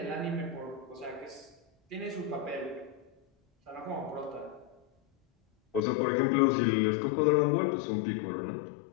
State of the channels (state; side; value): drops out; right; at 5.8 s